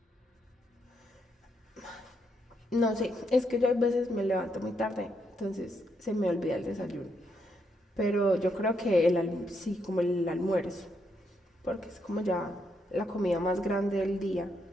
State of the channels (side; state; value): both; normal; correlation 0.78